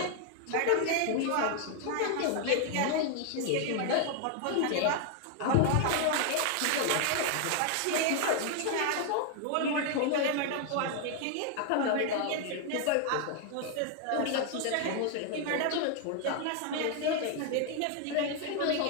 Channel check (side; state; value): both; different; correlation 0.00